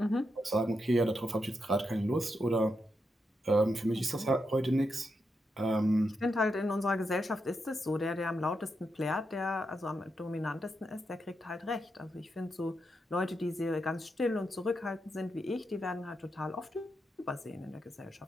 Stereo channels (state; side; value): normal; both; correlation 0.84